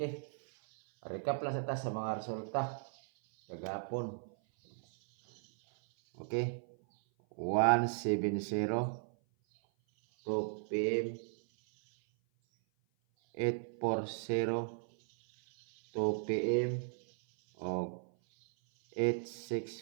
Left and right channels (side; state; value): left; silent; 54 dB below the other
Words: Recap lang sa ta sa mga resulta kagapon. Okay. 170 2 PM 840 2 PM o